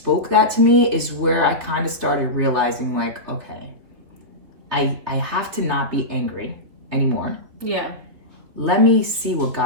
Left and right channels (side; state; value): left; late; 3.6 ms